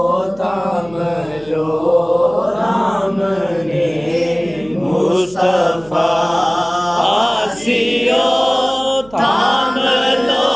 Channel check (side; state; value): right; noise; hum, 24 dB below the sound